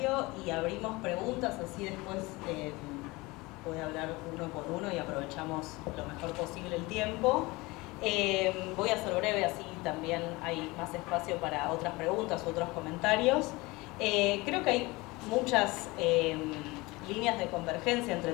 y abrimos preguntas, así después voy a hablar uno por uno y aprovechamos lo mejor posible el tiempo. Voy a ser breve, así también hay más espacio para otras preguntas u otros comentarios. Creo que hay muchas líneas de convergencia entre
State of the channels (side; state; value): right; quieter; 22.8 dB